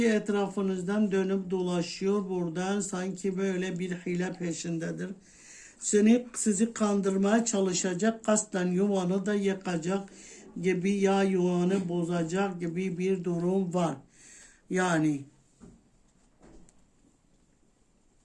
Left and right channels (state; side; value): identical; both; correlation 1.00